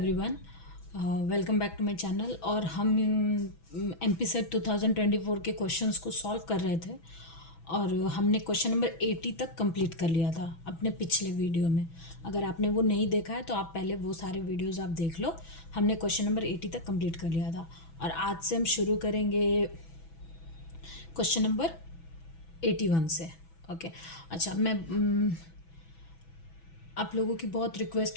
welcome back to my channel. और हम MP set 2024 के क्वेश्चंस को सॉल्व कर रहे थे और हमने क्वेश्चन नंबर 80 तक कंप्लीट कर लिया था अपने पिछले वीडियो में। अगर आपने वो नहीं देखा है तो आप पहले वो सारे वीडियोस आप देख लो। हमने क्वेश्चन नंबर 80 तक कंप्लीट कर लिया था और आज से हम शुरू करेंगे क्वेश्चन नंबर 81 से। ओके, अच्छा आप लोगों की बहुत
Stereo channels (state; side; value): late; right; 6.1 ms